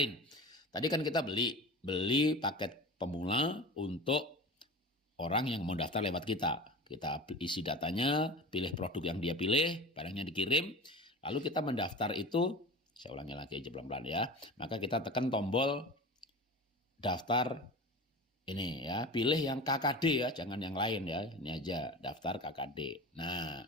Tadi kan kita beli paket pemula untuk orang yang mau daftar lewat kita. Kita isi datanya, pilih produk yang dia pilih, barangnya dikirim, lalu kita mendaftar itu, saya ulangi lagi aja pelan-pelan, ya. Maka kita tekan tombol daftar ini, ya. Pilih yang KKD, ya, jangan yang lain, ya. Ini aja daftar KKD. Nah,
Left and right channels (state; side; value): normal; both; correlation 0.33